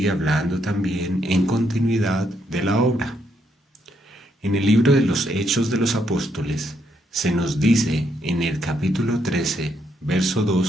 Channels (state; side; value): normal; both; correlation 0.75